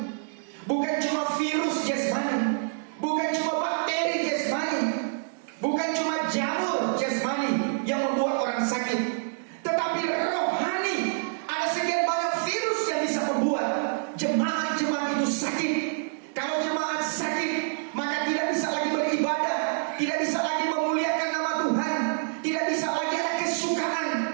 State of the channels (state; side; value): silent; left; digital silence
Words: bukan cuma virus jasmani, bukan cuma bakteri jasmani, bukan cuma jamur jasmani yang membuat orang sakit, tetapi rohani. Ada sekian banyak virus yang bisa membuat jemaat-jemaat itu sakit. Kalau jemaat sakit, maka tidak bisa lagi beribadah, tidak bisa lagi memuliakan nama Tuhan, tidak bisa lagi ada kesukaan,